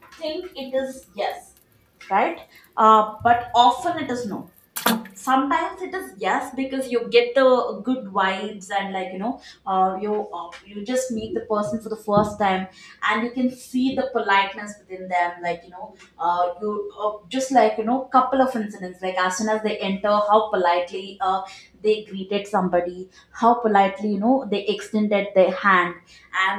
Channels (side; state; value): both; identical; correlation 1.00